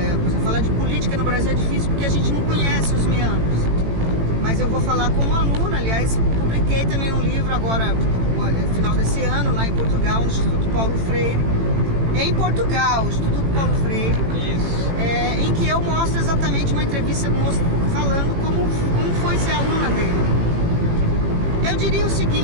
exemplo, falar de política no Brasil é difícil porque a gente não conhece os meandros. Mas eu vou falar como aluna, aliás, publiquei também um livro agora, no final desse ano, lá em Portugal, no Instituto Paulo Freire. Em Portugal, Instituto Paulo Freire. Isso. Em que eu mostro exatamente uma entrevista falando como foi ser aluna dele. Eu diria o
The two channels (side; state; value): left; late; 18 ms